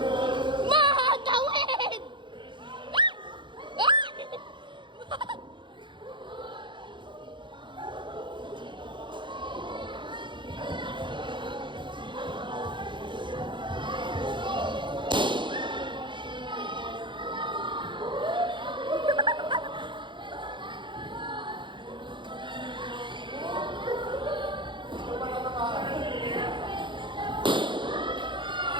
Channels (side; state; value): left; late; 0.23 ms